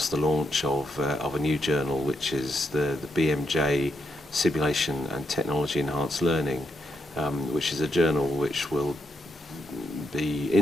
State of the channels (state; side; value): normal; both; correlation 0.80